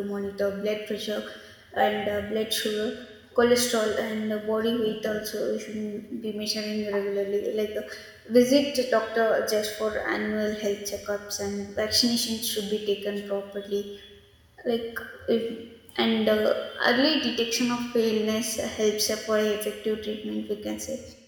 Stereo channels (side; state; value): both; identical; correlation 1.00